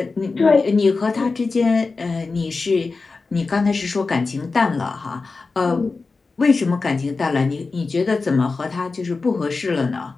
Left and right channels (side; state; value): right; quieter; 4.1 dB